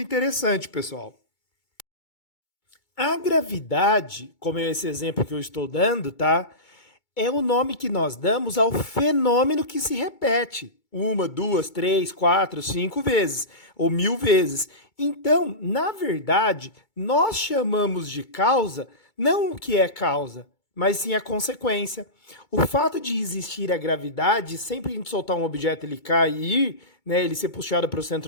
interessante, pessoal. A gravidade, como é esse exemplo que eu estou dando, tá? É o nome que nós damos ao fenômeno que se repete 1, 2, 3, 4, 5 vezes, ou 1000 vezes. Então, na verdade, nós chamamos de causa não o que é causa, mas sim a consequência. O fato de existir a gravidade, sempre que a gente soltar um objeto ele cair, né, ele ser puxado para o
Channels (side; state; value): right; late; 2.2 ms